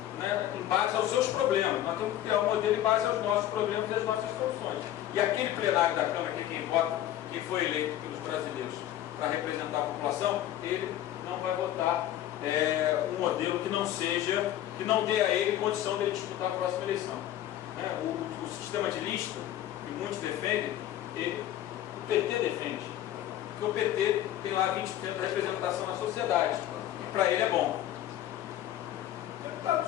né, em base aos seus problemas. Nós temos que criar um modelo em base aos nossos problemas e às nossas soluções. E aquele plenário da Câmara, que quem vota, quem foi eleito pelos brasileiros para representar a população, ele não vai votar um modelo que não seja, que não dê a ele condição de ele disputar a próxima eleição. O sistema de lista, que muitos defendem, o PT defende, porque o PT tem lá 20% da representação na sociedade, e para ele é bom. Deputado, o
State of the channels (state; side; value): quieter; right; 12.6 dB